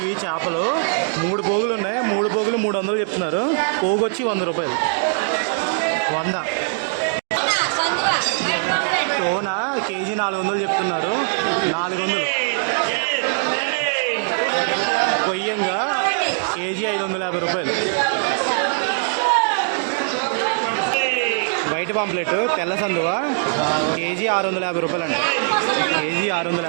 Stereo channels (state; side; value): silent; left; digital silence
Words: ఇవి చేపలు. 3 పోగులు ఉన్నాయి. 3 పోగులు 300 చెప్తున్నారు. పోగు వచ్చి 100 రూపాయలు. 100. టోన కేజీ 400 చెప్తున్నారు. 400. కొయ్యంగా కేజీ 550 రూపాయలు. వైట్ పాంప్లెట్ తెల్ల సందువా కేజీ 650 రూపాయలు అంట. కేజీ